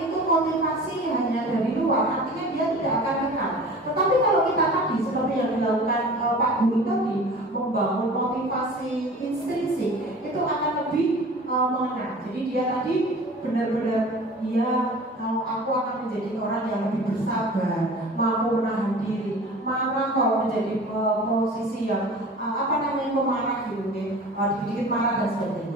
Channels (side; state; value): both; normal; correlation 0.41